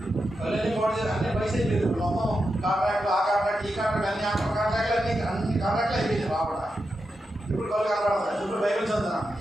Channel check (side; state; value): both; normal; correlation 0.88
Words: కళ్ళని బాడీ అన్ని పైసలు అయిపోయింది. మొత్తం కాంట్రాక్ట్లు ఆ కాంట్రాక్ట్ ఈ కాంట్రాక్ట్ అన్ని కాంట్రాక్ట్లు అన్ని కాంట్రాక్ట్లు అయిపోయింది రావడ. ఇప్పుడు కళ్ళు కనపడతాయి. ఇప్పుడు బైబిల్ చదువుతాను.